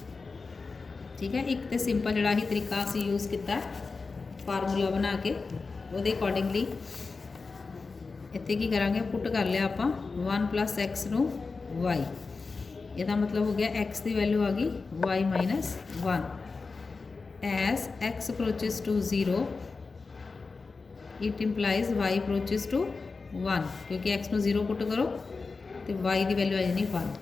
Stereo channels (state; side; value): quieter; right; 4.2 dB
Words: ठीक है। एक तो सिंपल जोड़ा ही तरीका असी यूज़ किया फार्मूला बना के वो अकॉर्डिंगली इतने की करांगे पुट कर लिया आप 1 प्लस एक्स नू वाई। यदा मतलब हो गया एक्स की वैल्यू आ गई y minus 1 as x approaches to 0 it implies y approaches to 1, क्योंकि एक्स नू 0 पुट करो तो वाई की वैल्यू आ जानी